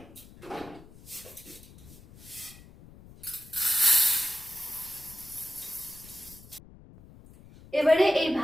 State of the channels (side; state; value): left; noise; rumble, 21 dB below the sound